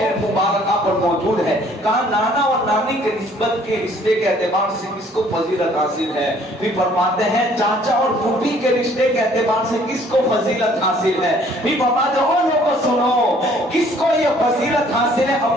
مبارکہ پر موجود ہے. کہا نانا اور نانی کے نسبت کے رشتے کے اعتبار سے کس کو فضیلت حاصل ہے. پھر فرماتے ہیں چاچا اور پھوپھی کے رشتے کے اعتبار سے کس کو فضیلت حاصل ہے. پھر فرماتے ہیں لوگوں سنو کس کو یہ فضیلت حاصل ہے،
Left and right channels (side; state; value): both; normal; correlation 0.58